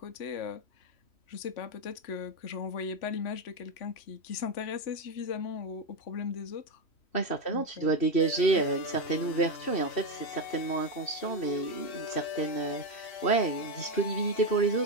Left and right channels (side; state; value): right; late; 3.1 ms